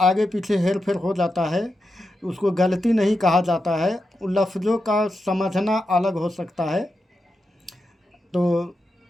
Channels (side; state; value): both; normal; correlation 0.88